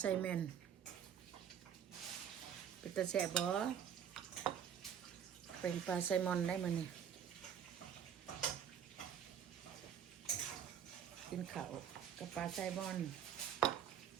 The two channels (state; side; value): quieter; left; 8.7 dB